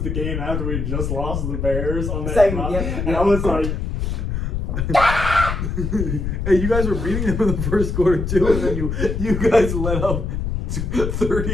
the game after we had just lost to the Bears on that Second, run, yep. and I was like, Hey, you guys were beating them in the first quarter too, and then you guys let up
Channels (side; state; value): left; noise; rumble, 2 dB below the sound